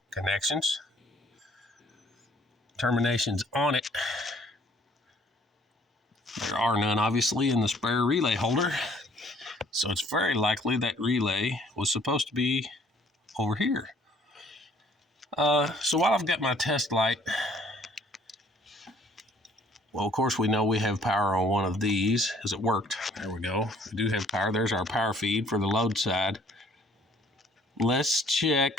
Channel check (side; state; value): both; normal; correlation 0.59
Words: connections. Terminations on it. There are none, obviously, in the spare relay holder. So it's very likely that relay was supposed to be over here. So while I've got my test light, well, of course, we know we have power on one of these, as it worked. There we go. We do have power. There's our power feed for the load side. Let's